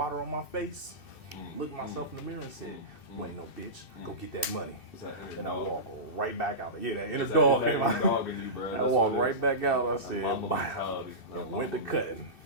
on my face, looked myself in the mirror and said, you ain't no bitch, go get that money. And I walk right back out. Yeah, that inner dog came out. I walked right back out. I said, bye. And went to cutting.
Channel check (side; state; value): right; late; 2.6 ms